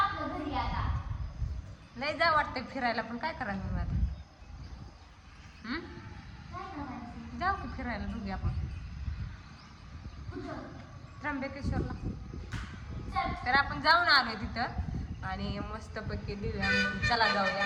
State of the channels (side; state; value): both; identical; correlation 1.00